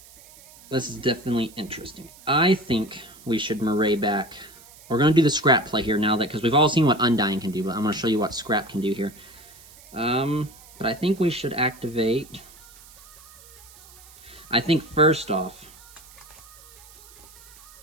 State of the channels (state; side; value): noise; right; hiss, 22 dB below the sound